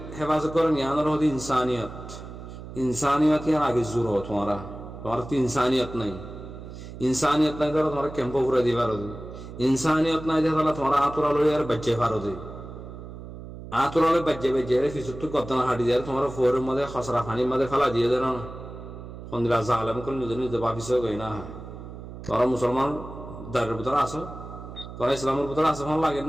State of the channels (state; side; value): noise; right; hum, 12 dB below the sound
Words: হেফাজত করেন ইয়ানোর হদি ইনসানিয়ত ইয়ার আগে জোর তোমারা তো ইনসানিয়ত নাই ধরো তোমার ক্যাম্প ঘুরে দিবার ইনসানিয়ত নাই দেখা তোমার আতরা লই আর বাচ্চা ফারো দে আতরা লই বাচ্চা রে ফিসুত কদনা হাঁটি দিয়ে তোমার ফোরের মধ্যে খসরা পানির মধ্যে ফেলা দিয়ে দেন না ফন্দিলা জালেম করে নিজে ভাবিস গই না তোরা মুসলমান দারের ভিতরে আসো, তোরা ইসলামের ভিতরে আসো, হন লাগে